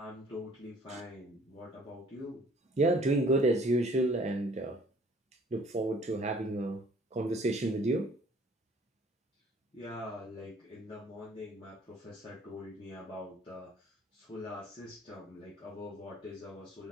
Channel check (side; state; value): both; normal; correlation 0.56